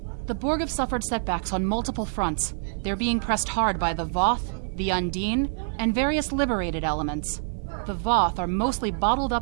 The Borg have suffered setbacks on multiple fronts. They're being pressed hard by the Voth, the Undine, and various liberated elements. The Voth are mostly bottled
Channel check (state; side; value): silent; left; digital silence